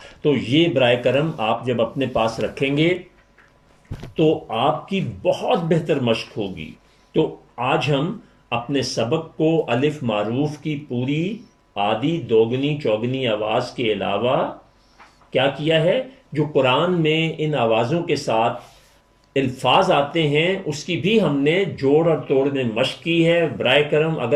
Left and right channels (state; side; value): identical; both; correlation 1.00